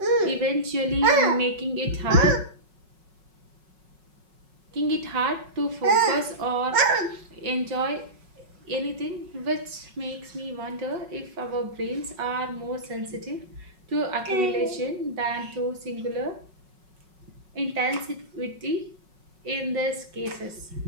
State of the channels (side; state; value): left; late; 5.4 ms